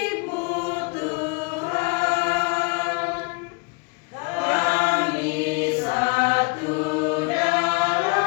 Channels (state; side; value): quieter; right; 30.9 dB